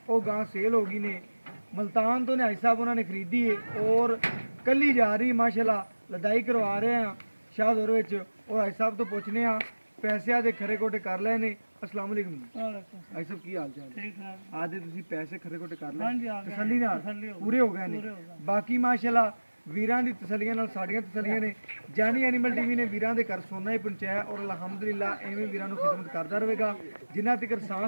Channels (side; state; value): both; inverted; correlation -1.00